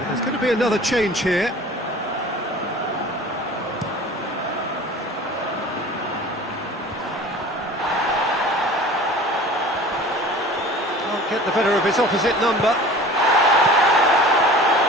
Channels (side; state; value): both; normal; correlation 0.42